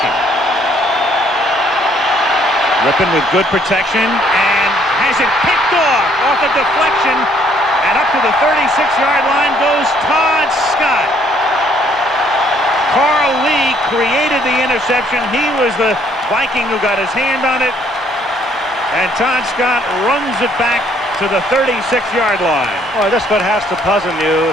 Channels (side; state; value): both; normal; correlation 0.64